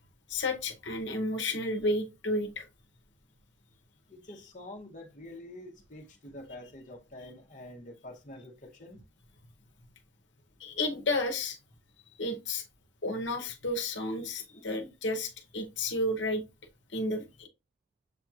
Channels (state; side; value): normal; both; correlation 0.10